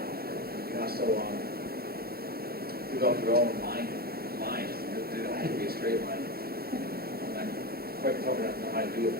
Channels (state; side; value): late; left; 0.44 ms